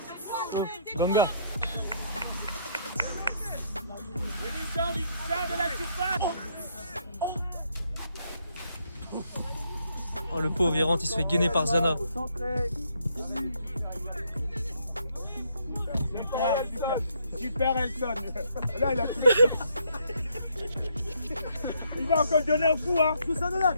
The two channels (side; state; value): both; inverted; correlation -0.70